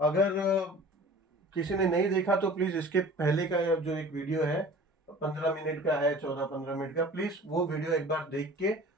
अगर किसी ने नहीं देखा तो प्लीज इसके पहले का जो एक वीडियो है 15 मिनट का है, 14-15 मिनट का, प्लीज वो वीडियो एक बार देख के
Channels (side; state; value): both; normal; correlation 0.44